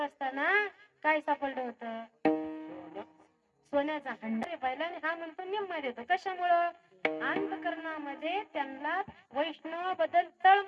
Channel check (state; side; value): identical; both; correlation 1.00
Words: काय सापडलं होतं? सोन्याचा हंडा पाहिला. आणि हा म्हणतो निम्मा देतो. कशामुळं? अंतकरणामध्ये त्यांना वैष्णवाबद्दल